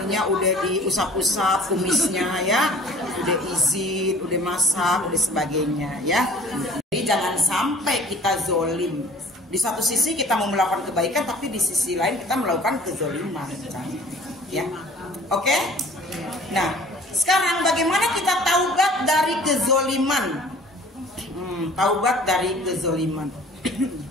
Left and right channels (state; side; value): normal; both; correlation 0.49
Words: udah diusap-usap kumisnya ya, udah izin, udah masak, udah sebagainya ya. Jadi jangan sampai kita zolim. Di satu sisi kita mau melakukan kebaikan, tapi di sisi lain kita melakukan kezoliman, ya. Oke? Nah, sekarang bagaimana kita taubat dari kezoliman? Taubat dari kezoliman.